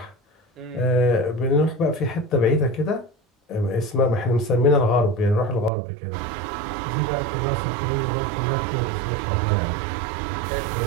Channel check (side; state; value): left; drops out; at 5.7 s